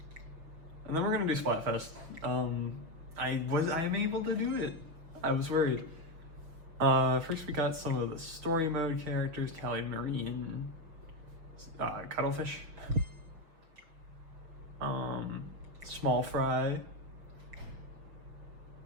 And then we're gonna do Splatfest. I am able to do it. I was worried. First we got some of the story mode characters, Callie Marie and Cuttlefish. Small Frye.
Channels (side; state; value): left; late; 6.2 ms